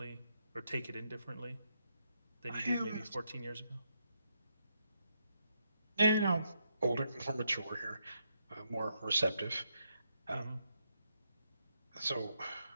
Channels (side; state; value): both; inverted; correlation -0.79